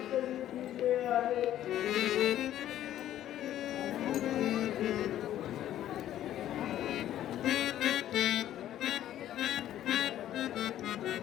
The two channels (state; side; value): quieter; right; 12.2 dB